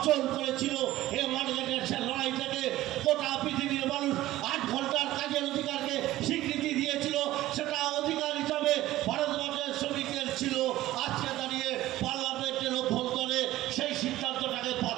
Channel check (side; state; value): left; quieter; 15.6 dB